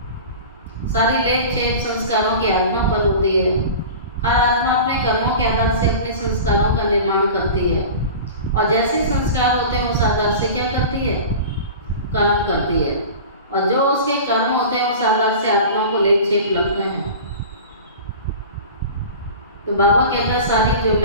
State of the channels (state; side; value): inverted; both; correlation -0.35